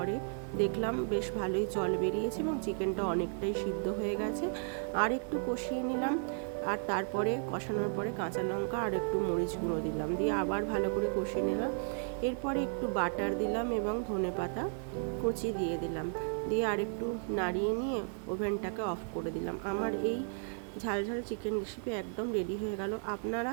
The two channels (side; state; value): left; silent; 55 dB below the other